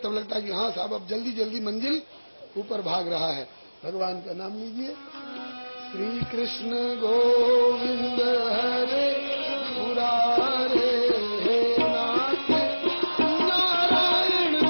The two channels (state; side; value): inverted; both; correlation -1.00